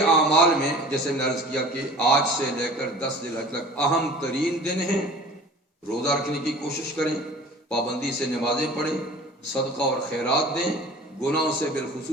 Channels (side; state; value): both; normal; correlation 0.43